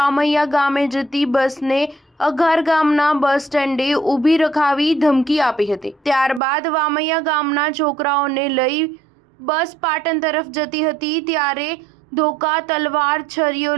ગામે જતી બસને અઘાર ગામના બસ સ્ટેન્ડે ઊભી રખાવી ધમકી આપી હતી। ત્યારબાદ વામૈયા ગામના છોકરાઓને લઈ બસ પાટણ તરફ જતી હતી ત્યારે ધોકા, તલવાર, છરીઓ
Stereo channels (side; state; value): left; drops out; at 6.4 s